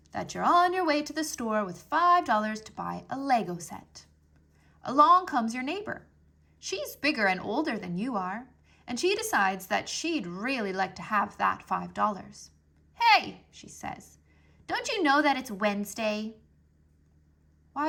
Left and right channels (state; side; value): identical; both; correlation 1.00